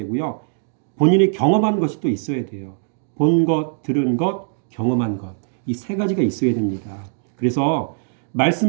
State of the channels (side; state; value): left; silent; digital silence